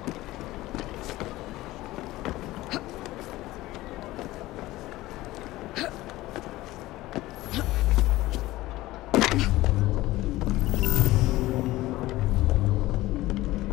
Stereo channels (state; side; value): quieter; right; 17.6 dB